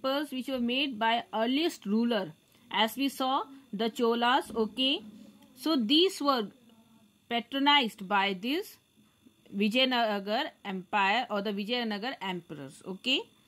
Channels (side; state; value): both; identical; correlation 1.00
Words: which were made by earliest ruler. As we saw, the Cholas, okay. So these were patronized by this Vijayanagar Empire or the Vijayanagar emperors, okay.